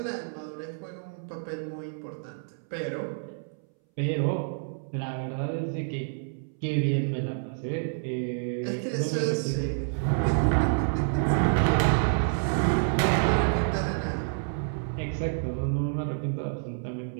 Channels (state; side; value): silent; left; 59 dB below the other